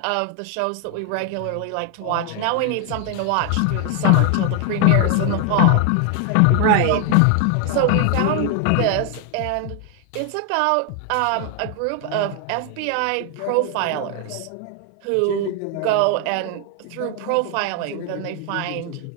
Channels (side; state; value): both; different; correlation 0.00